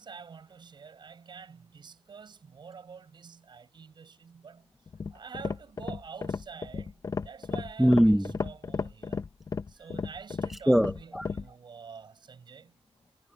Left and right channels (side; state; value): both; normal; correlation 0.95